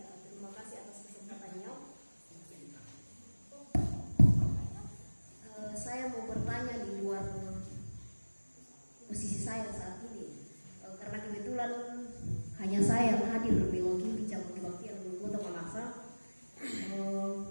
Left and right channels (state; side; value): inverted; both; correlation -1.00